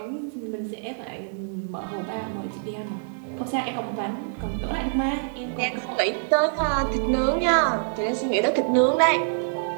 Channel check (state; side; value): silent; left; digital silence